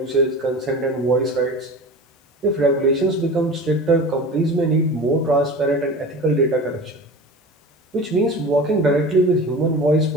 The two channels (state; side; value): normal; both; correlation 0.34